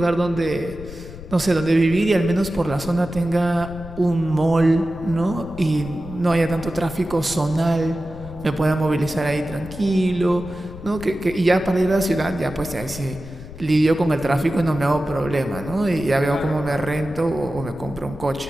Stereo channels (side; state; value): left; noise; rumble, 14 dB below the sound